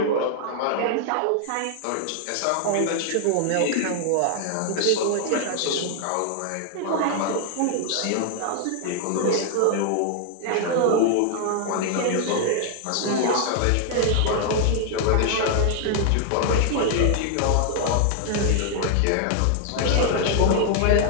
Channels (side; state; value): both; different; correlation 0.00